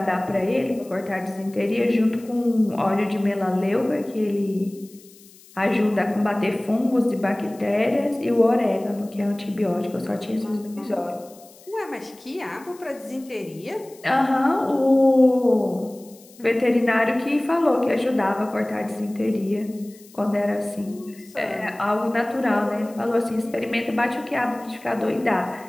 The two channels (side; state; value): left; noise; hiss, 24 dB below the sound